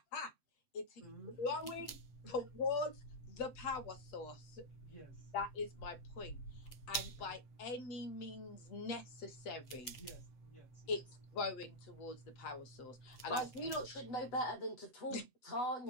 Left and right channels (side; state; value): right; late; 7.9 ms